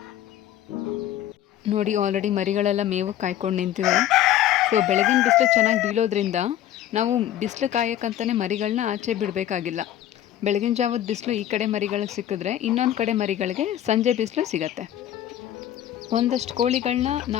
ನೋಡಿ, ಆಲ್ರೆಡಿ ಮರಿಗಳೆಲ್ಲ ಮೇವು ಕಾಯ್ಕೊಂಡು ನಿಂತಿವೆ. ಸೊ ಬೆಳಗಿನ ಬಿಸಿಲು ಚೆನ್ನಾಗಿ ಬೀಳೋದ್ರಿಂದ ನಾವು ಬಿಸಿಲು ಕಾಯೋಕ್ಕಂತಲೇ ಮರಿಗಳನ್ನ ಆಚೆ ಬಿಡಬೇಕಾಗಿಲ್ಲ. ಬೆಳಗಿನ ಜಾವದ ಬಿಸಿಲು ಈ ಕಡೆ ಮರಿಗಳಿಗೆ ಸಿಕ್ಕಿದ್ರೆ ಇನ್ನೊಂದು ಕಡೆ ಮರಿಗಳಿಗೆ ಸಂಜೆ ಬಿಸಿಲು ಸಿಗತ್ತೆ. ಒಂದಷ್ಟು ಕೋಳಿಗಳನ್ನ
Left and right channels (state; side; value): quieter; right; 11.9 dB